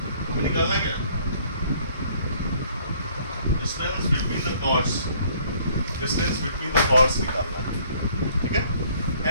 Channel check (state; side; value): inverted; both; correlation -0.60